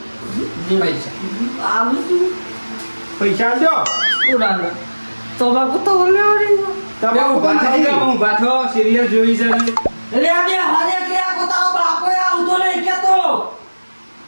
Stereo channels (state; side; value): inverted; both; correlation -1.00